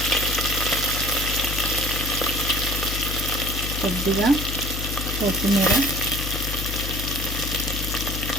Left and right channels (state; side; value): noise; left; hum, 4 dB below the sound